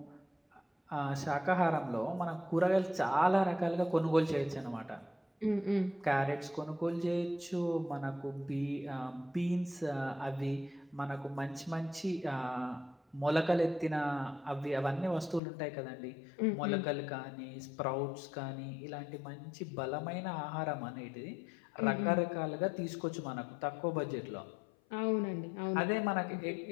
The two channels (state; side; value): drops out; right; at 15.4 s